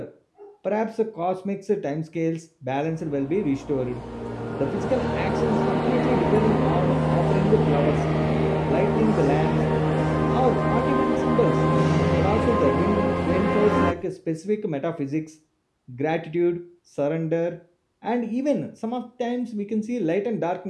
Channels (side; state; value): both; identical; correlation 1.00